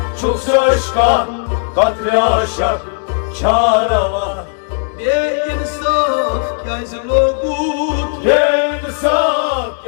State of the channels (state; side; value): silent; right; digital silence